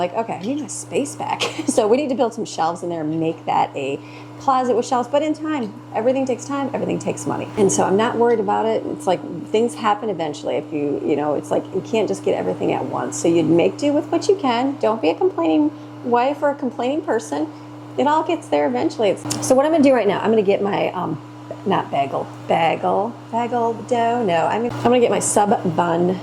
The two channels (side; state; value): both; identical; correlation 1.00